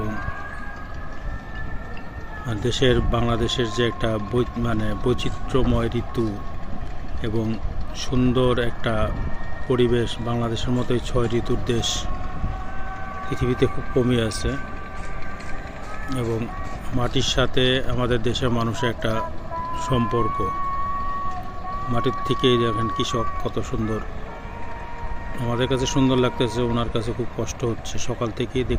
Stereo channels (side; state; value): both; identical; correlation 1.00